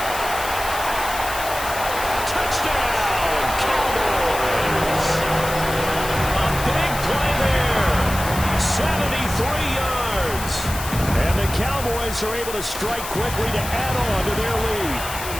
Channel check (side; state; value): left; noise; hiss, 9 dB below the sound